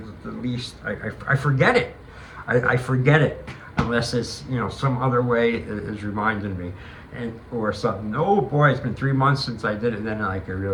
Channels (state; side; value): identical; both; correlation 1.00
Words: least, I forget it. I forget it, unless it's, you know, some other way is reminding me, and or something. Oh boy, it's been 3 months since I did it, and then like I